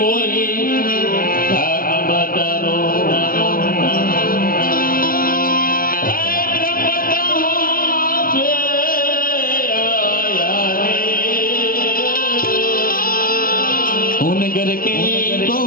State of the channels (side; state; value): right; late; 0.42 ms